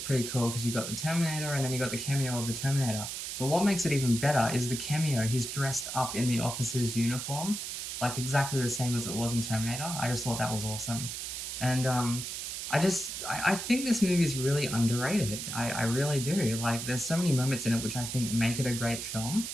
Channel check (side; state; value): right; noise; hiss, 5 dB below the sound